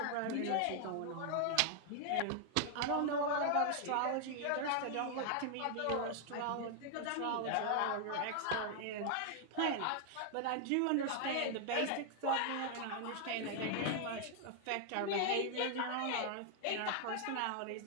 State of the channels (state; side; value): different; both; correlation 0.00